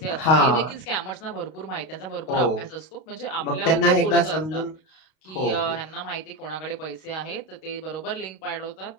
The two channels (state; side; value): late; right; 32 ms